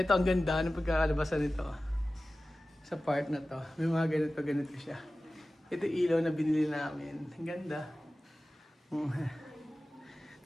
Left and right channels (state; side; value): normal; both; correlation 0.96